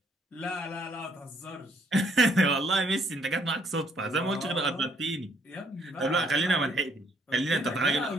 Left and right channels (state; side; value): normal; both; correlation 0.67